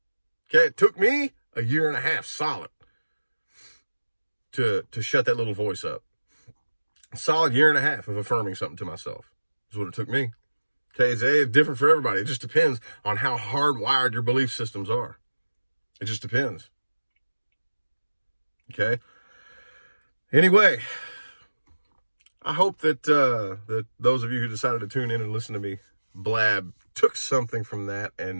Okay, it took me a 1.5 years solid to shut that little voice up. A solid 1.5 years of affirming something to myself is what it took me. Okay, it's different for everybody. It just depends on how hardwired your belief systems are. It just depends. Okay. Anyway, I hope that that those of you who decided to tune in and listen to me blab took something from that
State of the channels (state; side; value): inverted; both; correlation -1.00